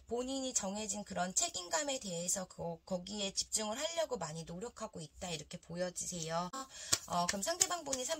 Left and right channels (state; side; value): identical; both; correlation 1.00